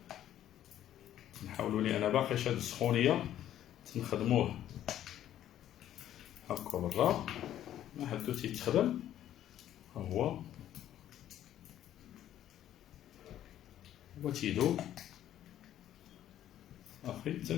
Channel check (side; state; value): right; quieter; 11.8 dB